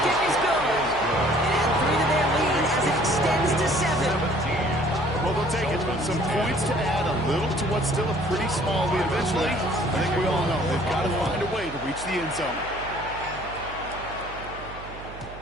is good. And add 3 to their lead as it extends to 7. Well, they'll take it. Some points to add a little to what's still a pretty small lead eventually. I think we all know they've got to find a way to reach the end zone.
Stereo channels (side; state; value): right; noise; hum, 15 dB below the sound